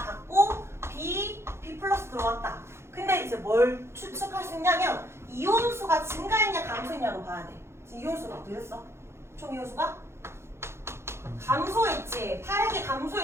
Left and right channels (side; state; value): left; late; 0.13 ms